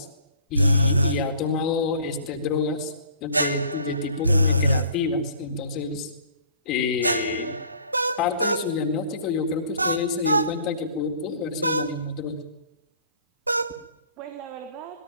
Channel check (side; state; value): both; inverted; correlation -0.52